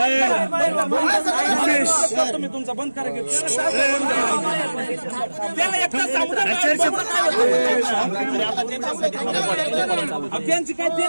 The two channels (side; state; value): both; inverted; correlation -1.00